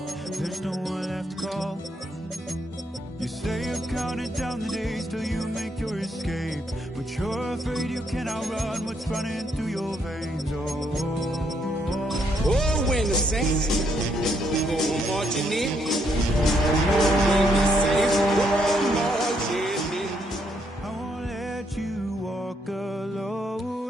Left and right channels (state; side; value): normal; both; correlation 0.74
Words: there's no one left to call. You say you're counting down the days till you make your escape, but you're afraid you cannot run what's running through your veins. Oh, when the Saints go marching in, I won't let you walk